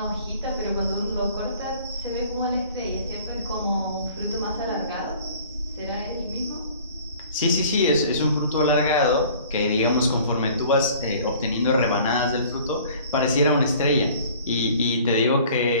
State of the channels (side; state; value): both; inverted; correlation -0.50